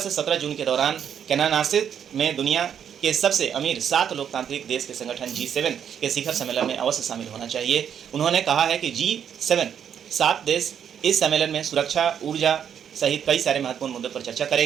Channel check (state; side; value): quieter; left; 8.4 dB